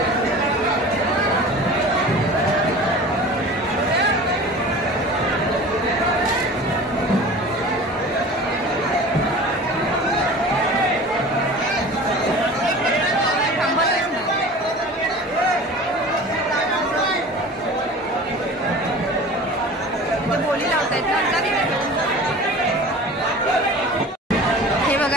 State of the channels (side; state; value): both; normal; correlation 0.39